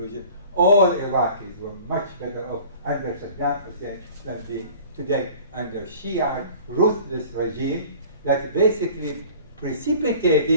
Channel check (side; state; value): both; inverted; correlation -0.46